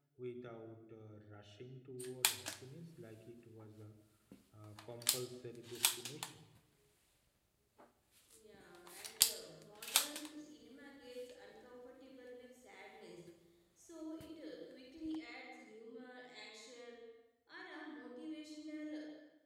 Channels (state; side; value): identical; both; correlation 1.00